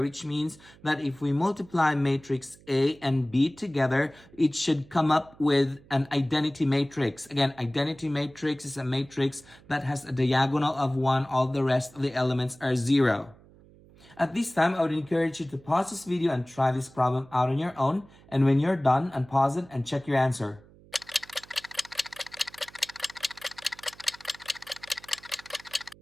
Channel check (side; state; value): right; noise; hum, 25 dB below the sound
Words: means that if we multiply matrix A and B together, it should come up with an identity matrix. Again, identity matrix is a matrix that has a diagonal of 1, all the rest of the elements are 0. At this time, I would encourage you to pause this video and try this problem out on your own. And when you're done, unpause it and check your answer.